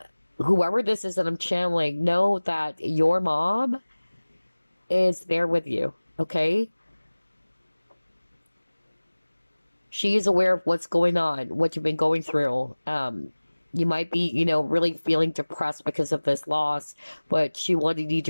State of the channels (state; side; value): inverted; both; correlation -1.00